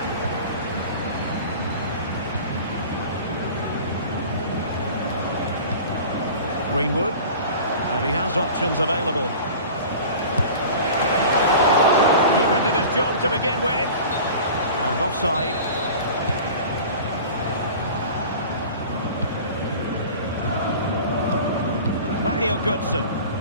Greenwood. And he has options available. Keeper did his job to begin with. And offside. Mario Götze.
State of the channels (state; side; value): inverted; both; correlation -0.40